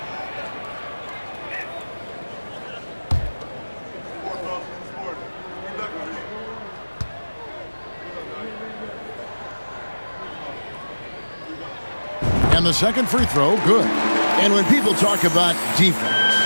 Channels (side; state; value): both; inverted; correlation -1.00